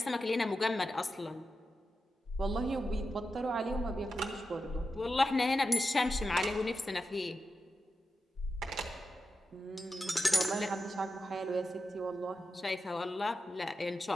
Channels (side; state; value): both; normal; correlation 0.89